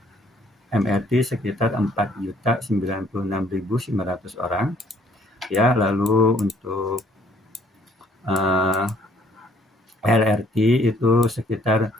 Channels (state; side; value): normal; both; correlation 0.63